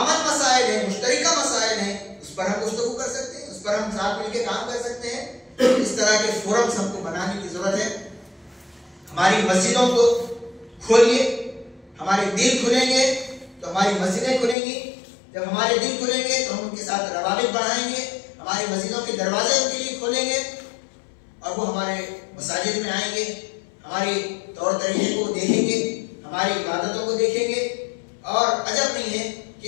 मसाइल हैं, मुश्तरका मसाइल हैं, उस पर हम गुफ्तगू कर सकते हैं, उस पर हम साथ मिलके काम कर सकते हैं। इस तरह के फोरम्स हमको बनाने की जरूरत है। हमारी मस्जिदों को खोलिए, हमारे दिल खुलेंगे तो हमारी मस्जिदें खुलेंगी, जब हमारे दिल खुलेंगे तो हम उनके साथ रवाबित बढ़ाएंगे, हमारी मस्जिदों के दरवाजे उनके लिए खोलेंगे और वो हमारे मसाजिद में आएंगे, हमारी तौर तरीके को देखेंगे, हमारी इबादतों को देखेंगे। और अजब नहीं है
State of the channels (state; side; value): drops out; right; at 14.6 s